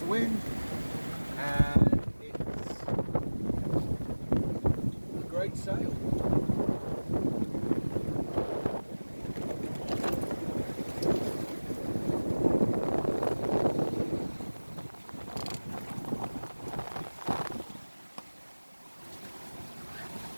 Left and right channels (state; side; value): inverted; both; correlation -1.00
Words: of wind, and it's a great sail.